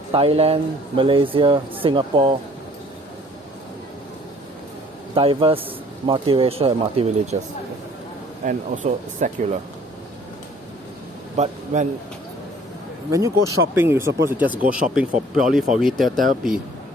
Thailand, Malaysia, Singapore, diverse, multiracial, and multi-religious, and also secular. But when you go shopping, you're supposed to just go shopping purely for retail therapy.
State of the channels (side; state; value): both; normal; correlation 0.55